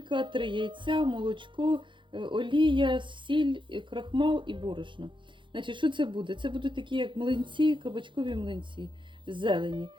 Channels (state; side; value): late; left; 0.23 ms